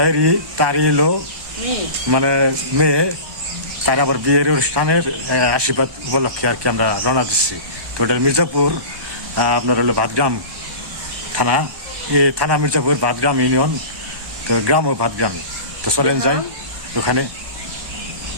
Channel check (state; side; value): late; left; 1.1 ms